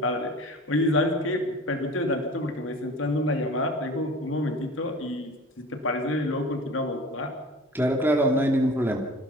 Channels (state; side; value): normal; both; correlation 0.40